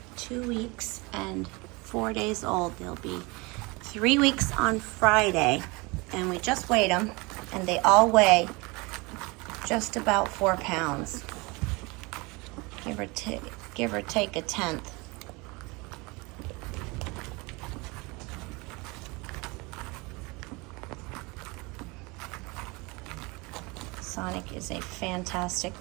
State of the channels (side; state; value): left; quieter; 26.1 dB